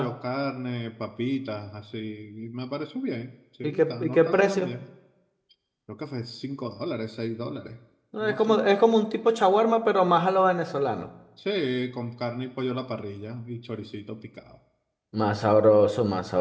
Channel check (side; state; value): both; identical; correlation 1.00